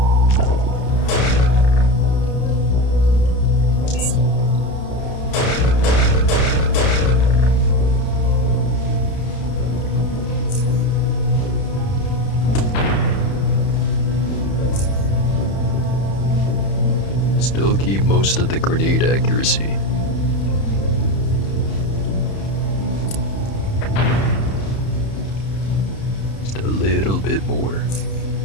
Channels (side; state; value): right; late; 31 ms